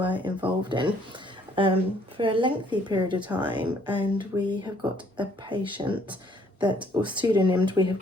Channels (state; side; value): normal; both; correlation 0.63